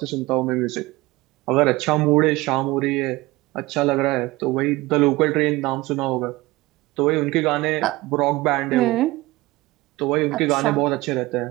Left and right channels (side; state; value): left; quieter; 20.2 dB